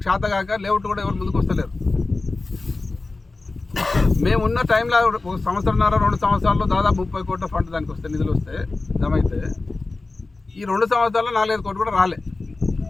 శాత కాక లేఅవుట్ కూడా ఎవరు ముందుకు వస్తలేరు. మేమున్న టైంలో 1 సంవత్సరంన్నర 2 సంవత్సరాల్లో దాదాపు 30 కోట్ల ఫండ్ దానికి వస్తే, నిధులు వస్తే జమ అయితే, ఈ 2 సంవత్సరాల్లో 4-5 కోట్లు కూడా రాలే.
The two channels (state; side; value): quieter; right; 3.5 dB